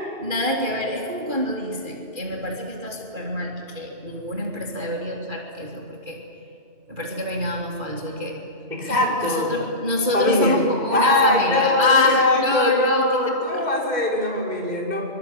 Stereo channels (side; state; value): left; late; 2.4 ms